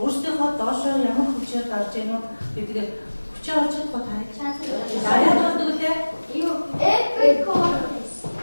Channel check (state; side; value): inverted; both; correlation -1.00